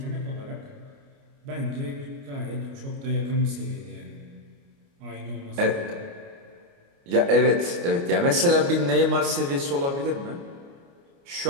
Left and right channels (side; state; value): left; late; 29 ms